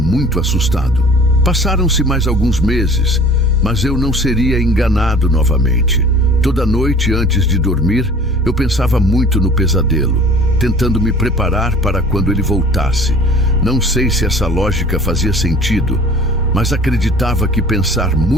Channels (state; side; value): normal; both; correlation 0.47